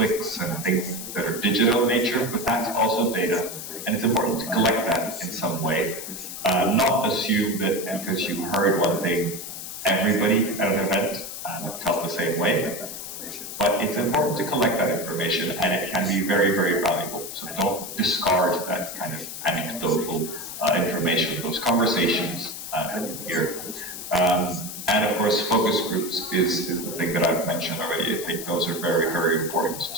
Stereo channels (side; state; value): left; noise; hiss, 9 dB below the sound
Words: and things that are digital in nature, but that's also data. And it's important to collect that in some way. Not assume that because you heard one thing, everybody at an event felt the same way. But it's important to collect that information, and it can be very, very valuable. So don't discard that kind of anecdotal information, those conversations here. And of course, focus groups is the thing that I've mentioned already. I think those are very, very important